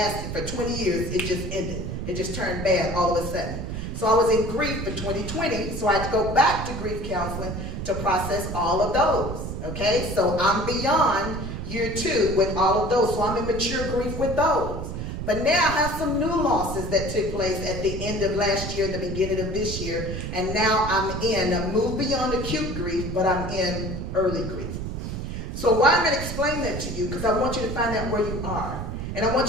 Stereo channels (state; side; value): noise; right; rumble, 5 dB below the sound